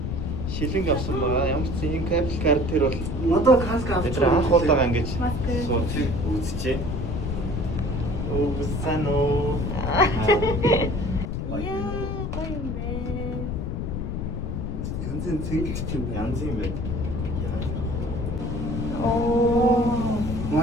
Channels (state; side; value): noise; left; rumble, 3 dB below the sound